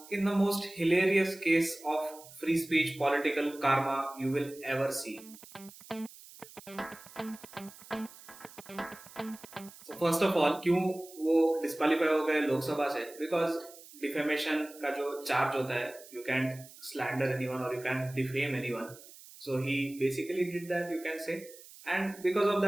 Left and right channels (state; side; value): noise; right; hiss, 19 dB below the sound